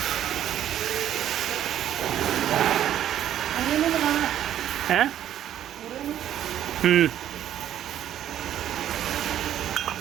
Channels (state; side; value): quieter; left; 11.1 dB